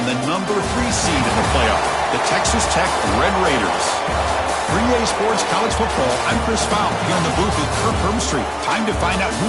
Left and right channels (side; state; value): both; identical; correlation 1.00